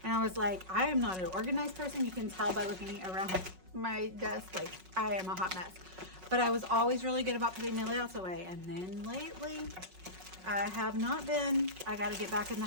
And I was like, I am not an organized person. You can tell by looking around my desk, like I am a hot mess. But I was always really good about putting my layouts away. And then lately, I have not been. I got to get back in the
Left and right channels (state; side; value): late; left; 5.4 ms